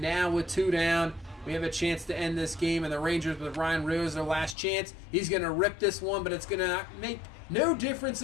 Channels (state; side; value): drops out; right; at 4.5 s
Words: with 2 down, we have a chance to end this game. And the Rangers with Ryan Rose, their last chance. He's going to rip this one, but it's going to make no difference